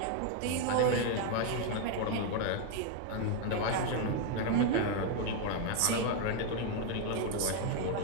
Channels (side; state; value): both; different; correlation 0.01